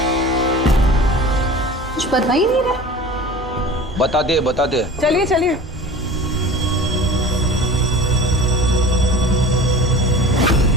कुछ बता ही नहीं रहा। बता दे। चलिए चलिए।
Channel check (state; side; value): normal; both; correlation 0.38